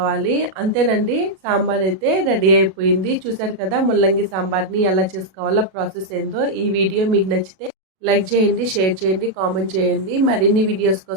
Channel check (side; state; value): left; late; 37 ms